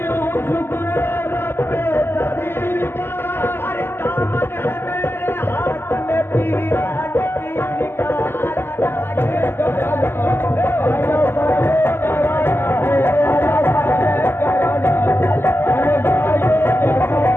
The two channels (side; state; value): right; late; 0.11 ms